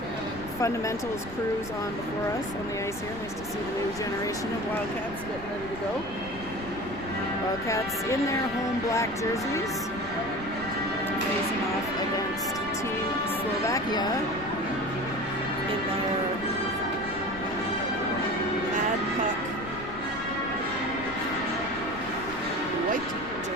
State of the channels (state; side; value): noise; left; rumble, 14 dB below the sound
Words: fundamentals crews on before us on the ice here. Nice to see the new generation of Wildcats getting ready to go. Wildcats in their home black jerseys, facing off against Team Slovakia in their Mad Puck white